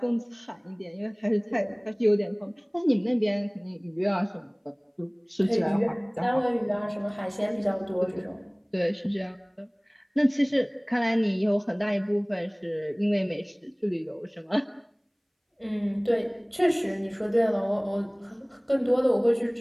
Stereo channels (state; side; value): identical; both; correlation 1.00